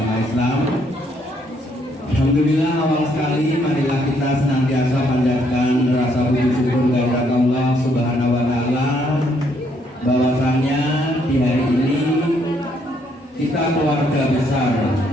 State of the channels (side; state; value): both; normal; correlation 0.70